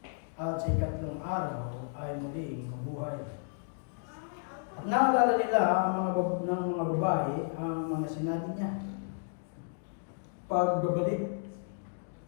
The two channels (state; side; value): silent; right; digital silence